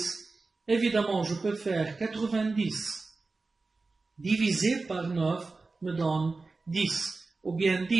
Évidemment, je peux faire 90 divisé par 9 me donne 10. Ou bien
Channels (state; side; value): quieter; left; 3.7 dB